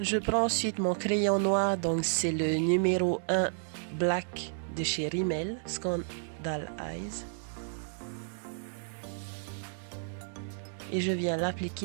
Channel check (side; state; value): left; silent; digital silence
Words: prends ensuite mon crayon noir, donc c'est le numéro 1 Black de chez Rimmel, Scandal Eyes. Et je viens